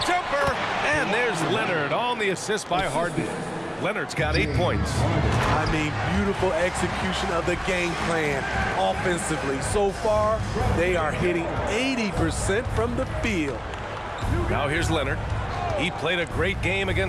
jumper, and there's Leonard on the assist by Harden. Leonard's got 8 points. I mean, beautiful execution of the game plan offensively. So far, they are hitting 80% from the field. Now here's Leonard. He played a great game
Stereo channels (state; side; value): identical; both; correlation 1.00